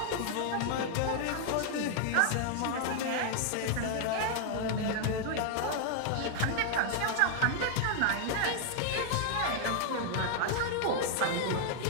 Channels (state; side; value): different; both; correlation 0.00